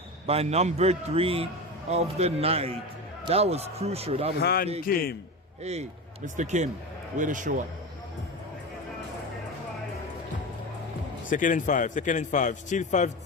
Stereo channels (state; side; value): normal; both; correlation 0.24